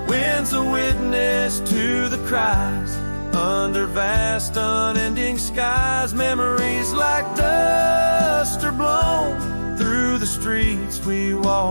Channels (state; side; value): inverted; both; correlation -1.00